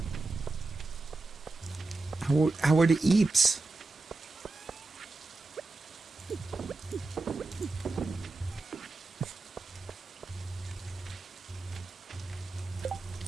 How are the eeps?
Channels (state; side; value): quieter; left; 3.5 dB